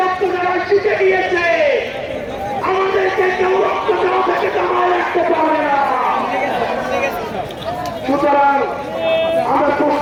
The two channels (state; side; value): identical; both; correlation 1.00